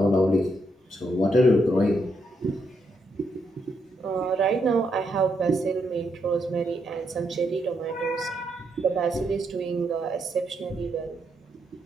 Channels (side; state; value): both; normal; correlation 0.79